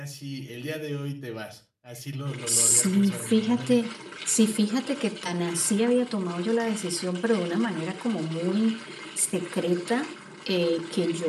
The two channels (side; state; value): both; identical; correlation 1.00